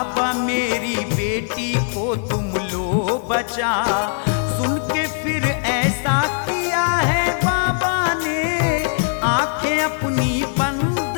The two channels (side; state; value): right; silent; 60 dB below the other